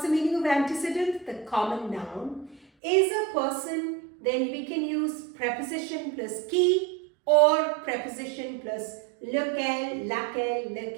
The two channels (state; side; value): drops out; left; at 2.6 s